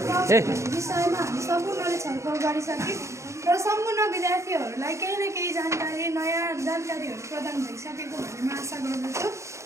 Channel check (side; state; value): left; late; 0.14 ms